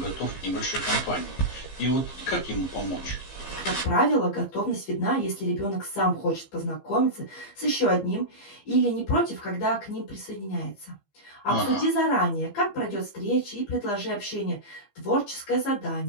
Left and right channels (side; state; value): right; late; 15 ms